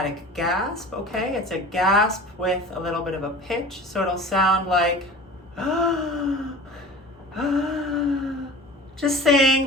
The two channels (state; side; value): normal; both; correlation 0.39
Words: gasp, okay? It's a gasp with a little bit of a pitch, so it'll sound like just